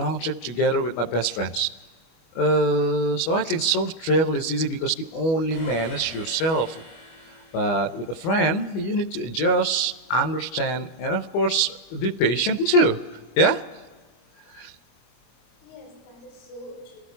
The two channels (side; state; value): right; late; 25 ms